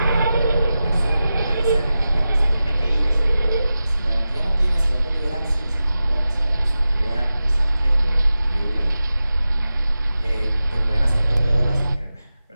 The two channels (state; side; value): inverted; both; correlation -0.93